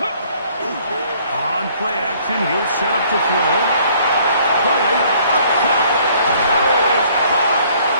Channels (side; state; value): both; inverted; correlation -0.60